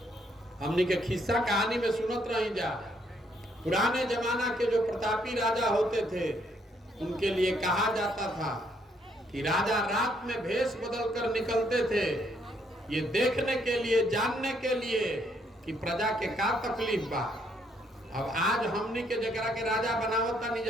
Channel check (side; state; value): both; normal; correlation 0.71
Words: हमने के खिस्सा कहानी में सुनत रही जा। पुराने जमाना के जो प्रतापी राजा होते थे उनके लिए कहा जाता था कि राजा रात में भेष बदल कर निकलते थे, ये देखने के लिए, जानने के लिए कि प्रजा के का तकलीफ बा। अब आज हमनी के जगह के राजा बनावता नहीं